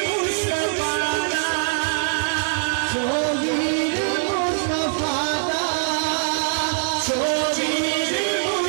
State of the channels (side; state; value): left; silent; 64 dB below the other